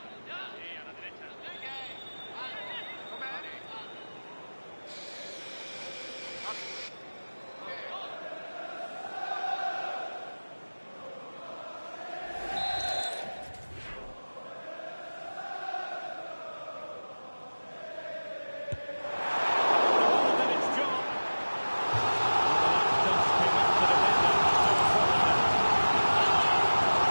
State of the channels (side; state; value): both; inverted; correlation -1.00